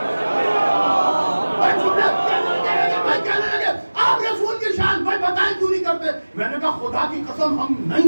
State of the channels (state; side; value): inverted; both; correlation -1.00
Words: آپ رسول کی شان بھائی بتائیں کیوں نہیں کرتے. میں نے کہا خدا کی قسم ہم